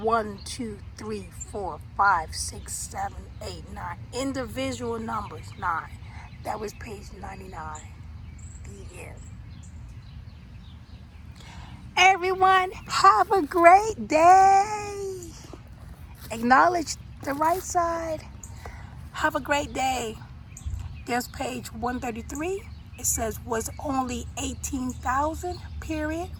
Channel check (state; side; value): identical; both; correlation 1.00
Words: 2, 3, 4, 5, 6, 7, 8, 9. Individual numbers, 9. That was page 99. The end. Everyone, have a great day. Acknowledge the right side. Have a great day. There's page 133. It says was only 18,000, period.